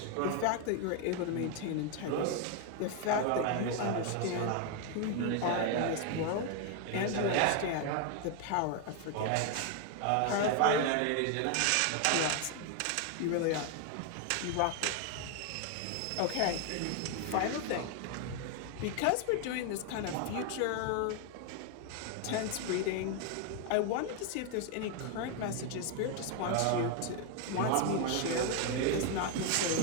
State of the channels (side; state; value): both; different; correlation 0.01